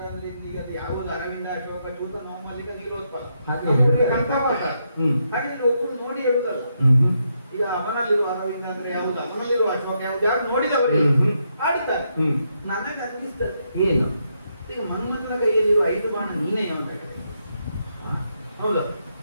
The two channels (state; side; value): inverted; both; correlation -0.79